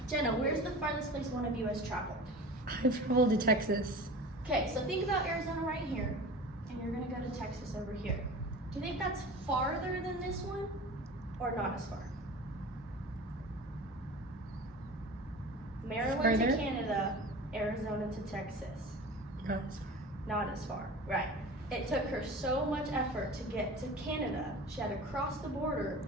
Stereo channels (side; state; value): both; normal; correlation 0.36